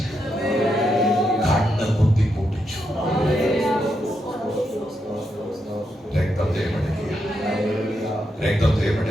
കണ്ണ് കുത്തി പൊട്ടിച്ചു. രക്തത്തെ മെടുക്കുക, രക്തത്തെ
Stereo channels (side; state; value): both; normal; correlation 0.82